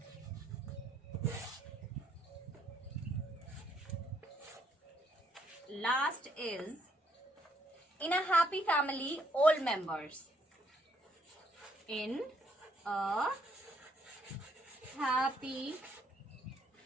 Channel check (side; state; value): both; normal; correlation 0.70